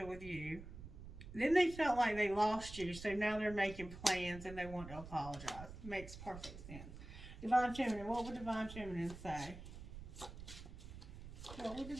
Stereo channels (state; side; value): noise; right; rumble, 12 dB below the sound